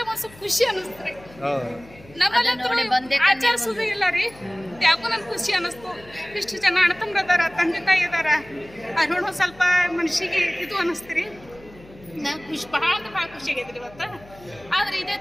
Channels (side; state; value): left; noise; hum, 22 dB below the sound